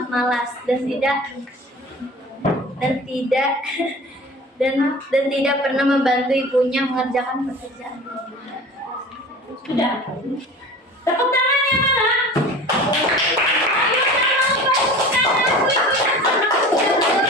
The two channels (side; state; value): both; normal; correlation 0.39